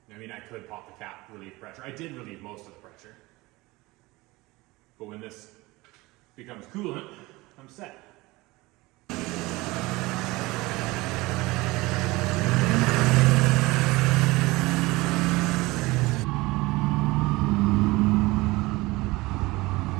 I mean, I could pop the cap, relieve pressure. I did relieve most of the pressure. But when this becomes coolant, I'm set.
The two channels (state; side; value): quieter; left; 21.4 dB